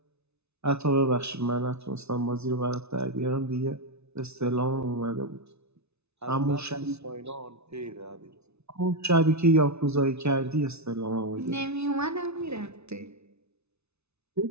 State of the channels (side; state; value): left; late; 0.81 ms